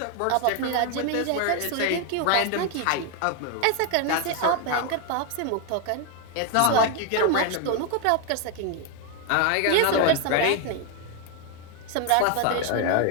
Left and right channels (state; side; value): different; both; correlation 0.01